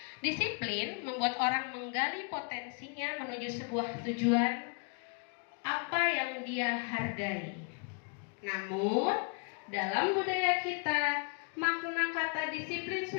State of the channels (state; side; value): quieter; right; 38.0 dB